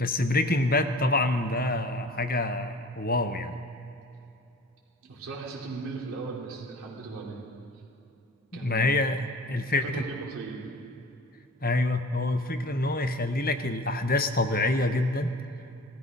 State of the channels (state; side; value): normal; both; correlation 0.43